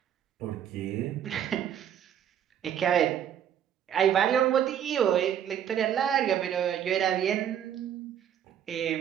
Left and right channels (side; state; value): left; quieter; 9.6 dB